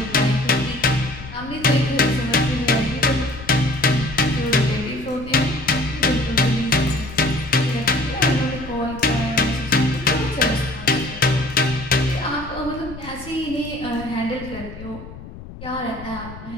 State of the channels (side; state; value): left; noise; rumble, 14 dB below the sound